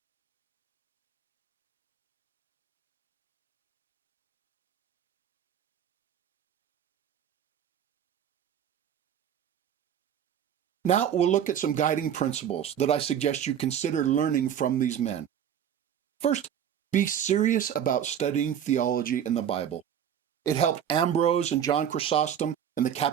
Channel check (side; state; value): left; quieter; 9.3 dB